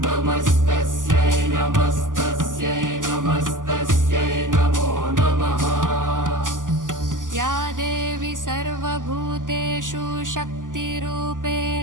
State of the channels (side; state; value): left; late; 0.88 ms